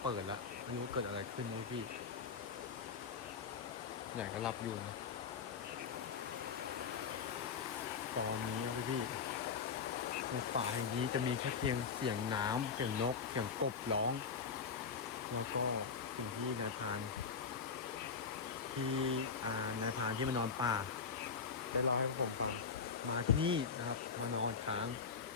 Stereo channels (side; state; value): right; quieter; 5.8 dB